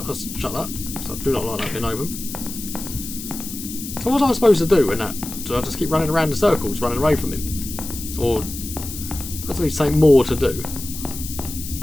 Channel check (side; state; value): left; noise; hiss, 9 dB below the sound